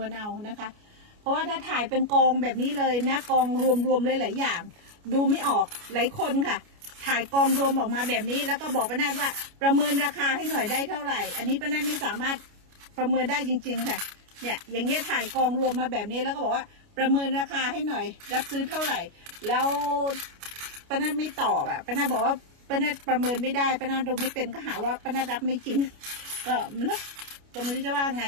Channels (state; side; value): late; left; 29 ms